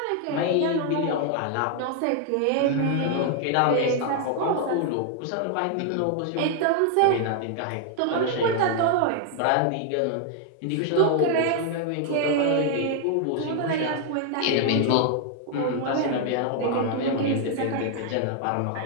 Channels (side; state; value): both; different; correlation 0.00